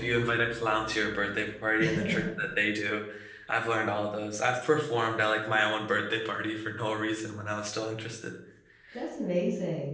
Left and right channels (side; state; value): both; identical; correlation 1.00